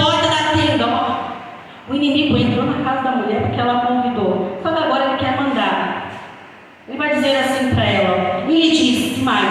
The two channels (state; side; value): identical; both; correlation 1.00